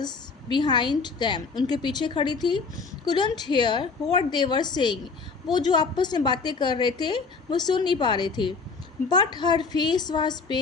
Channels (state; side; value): quieter; right; 4.6 dB